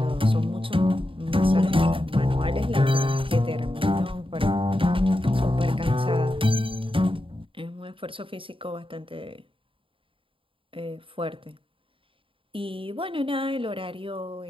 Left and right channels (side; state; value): left; late; 0.25 ms